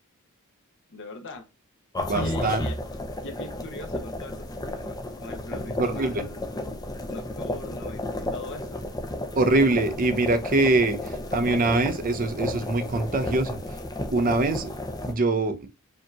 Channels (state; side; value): normal; both; correlation 0.45